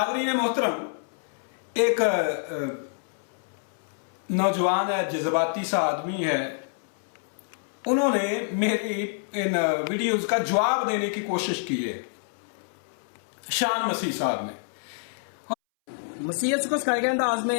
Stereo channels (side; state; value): right; silent; 60 dB below the other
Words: محترم، ایک نوجوان ہے، جذباتی سا آدمی ہے، انہوں نے میری ان ویڈیوز کا جواب دینے کی کوشش کی ہے، شان مسیح صاحب نے۔ مسیحیت کو سکھائے گئے انداز